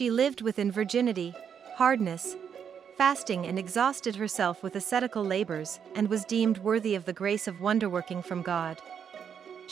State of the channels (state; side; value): quieter; left; 7.7 dB